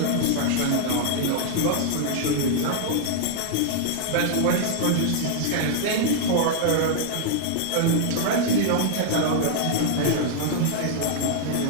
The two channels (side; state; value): both; different; correlation 0.00